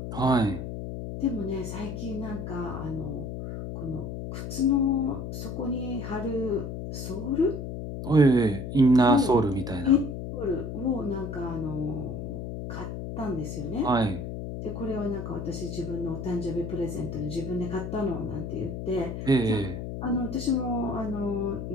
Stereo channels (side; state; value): left; noise; hum, 6 dB below the sound